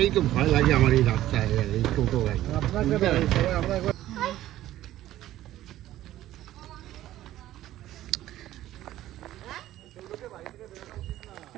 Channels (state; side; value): quieter; left; 14.0 dB